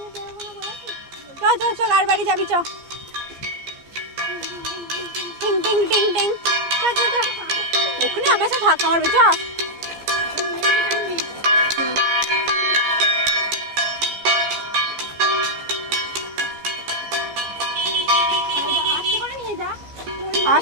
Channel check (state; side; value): late; left; 15 ms